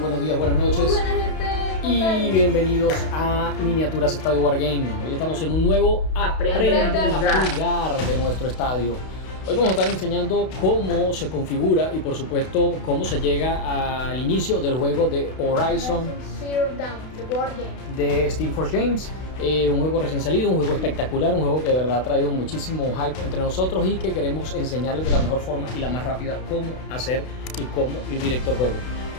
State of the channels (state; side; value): late; right; 32 ms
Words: días, buenas noches. Muy buena gente. Y bienvenidos a Miniaturas Estadio Wargame. Hoy estamos en un nuevo Aprende a jugar de nuestro estadio. Hoy vamos a estar enseñando cómo se configura y por supuesto cómo se llega al inicio del juego de Horizon Zero Dawn, the board game. de Steam Force Games. Un juego recién salido, un juego espectacular, un juego que de verdad ha traído muchísimo hype entre nosotros y que queremos enseñarles de la mejor forma y la más rápida cómo hacer y cómo ir directo al juego.